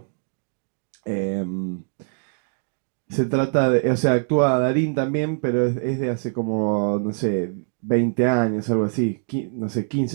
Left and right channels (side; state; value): left; silent; digital silence